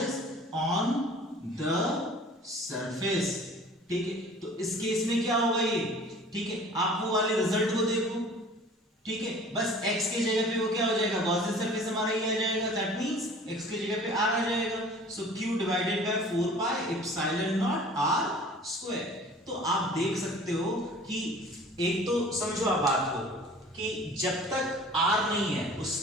on the surface, ठीक है। तो इस केस में क्या होगा ये, ठीक है, आप वो वाले रिजल्ट को देखो, ठीक है, बस x के जगह पे वो क्या हो जाएगा, गॉसियन सरफेस हमारा ये आ जाएगा, दैट मींस x के जगह पे r आ जाएगा। सो q divided by 4 pi epsilon not r square. तो आप देख सकते हो कि एक तो समझो आप बात को कि जब तक r नहीं है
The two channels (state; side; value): normal; both; correlation 0.47